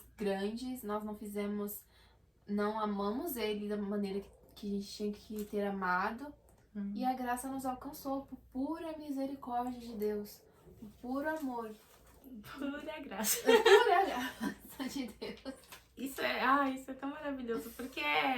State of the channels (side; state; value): both; identical; correlation 1.00